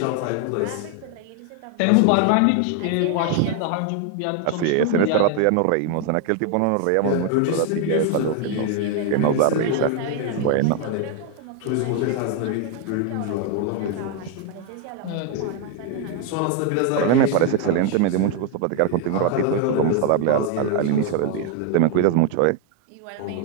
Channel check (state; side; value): different; both; correlation 0.01